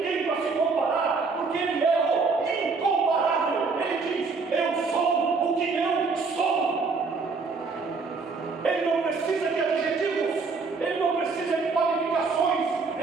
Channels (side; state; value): left; quieter; 4.5 dB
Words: para se comparar, porque ele é o incomparável, ele diz: eu sou o que eu sou. Ele não precisa de adjetivos, ele não precisa de qualificações,